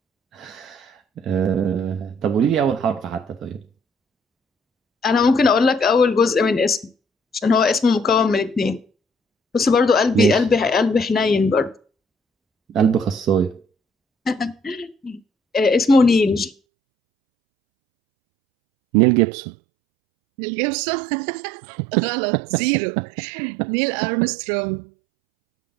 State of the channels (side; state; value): left; drops out; at 16.6 s